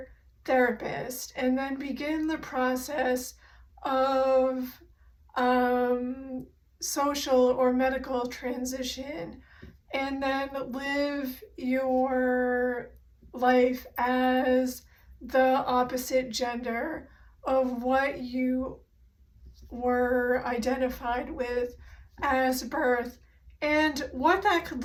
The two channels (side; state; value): both; identical; correlation 1.00